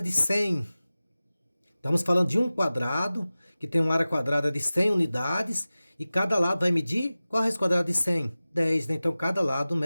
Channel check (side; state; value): both; inverted; correlation -0.97